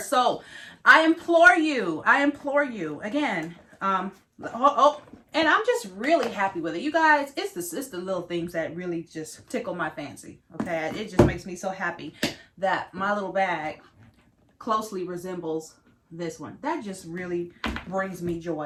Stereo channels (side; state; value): both; identical; correlation 1.00